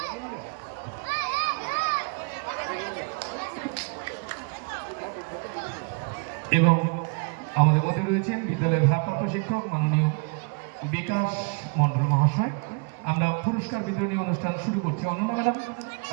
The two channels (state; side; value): quieter; left; 35.6 dB